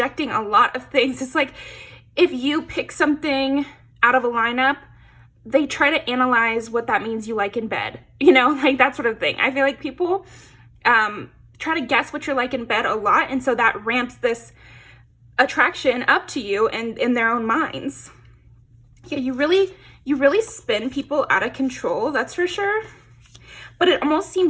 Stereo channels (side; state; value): both; identical; correlation 1.00